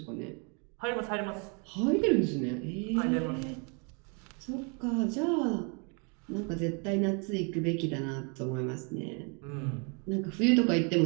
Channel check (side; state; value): left; quieter; 36.0 dB